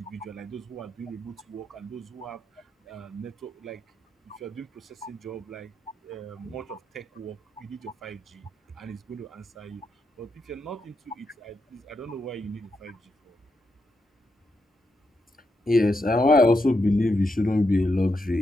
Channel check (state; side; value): normal; both; correlation 0.83